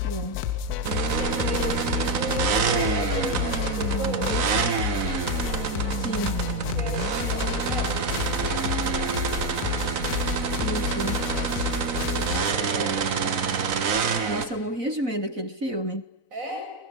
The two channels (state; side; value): late; left; 4.0 ms